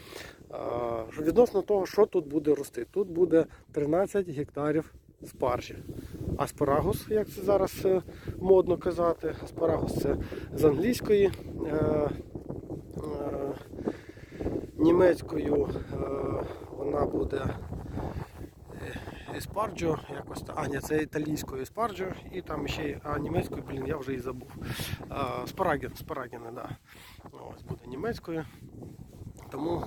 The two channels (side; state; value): both; identical; correlation 1.00